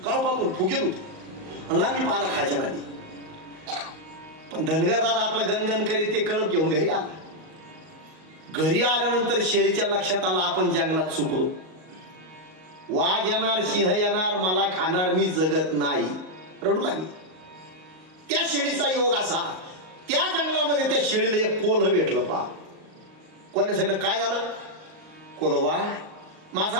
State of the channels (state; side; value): late; left; 38 ms